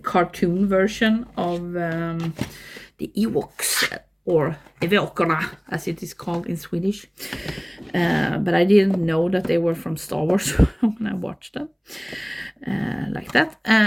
cartoon version of the Ewoks, or Ewokerna, as it is called in Swedish. But I didn't know that they were from Star Wars when I watched them like that.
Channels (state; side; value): identical; both; correlation 1.00